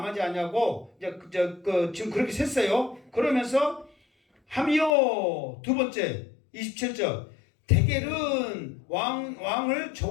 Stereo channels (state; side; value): drops out; right; at 4.9 s